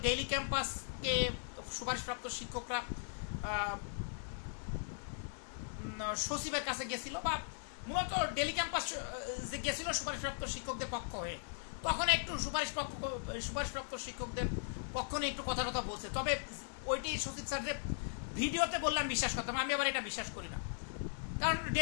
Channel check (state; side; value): silent; right; 52 dB below the other